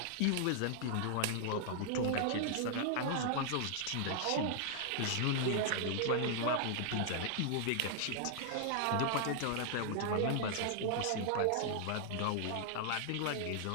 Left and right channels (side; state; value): both; different; correlation -0.01